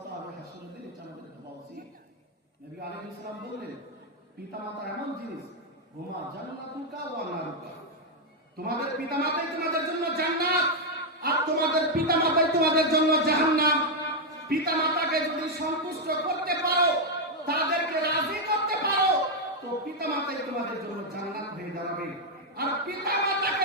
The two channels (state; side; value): normal; both; correlation 0.01